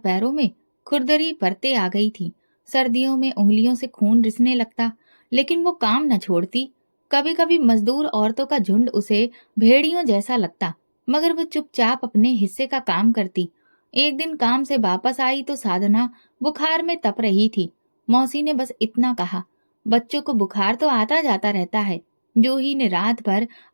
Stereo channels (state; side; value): inverted; both; correlation -1.00